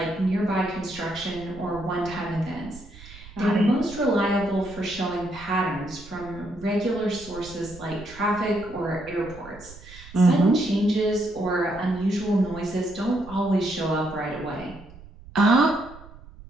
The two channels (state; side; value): noise; right; rumble, 18 dB below the sound